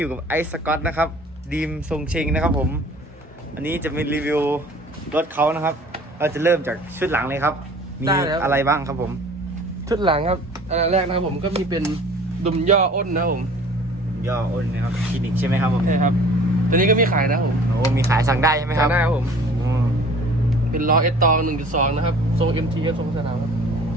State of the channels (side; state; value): both; normal; correlation 0.48